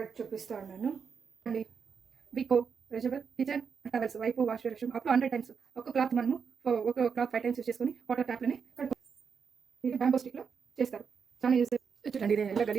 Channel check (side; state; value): left; quieter; 6.2 dB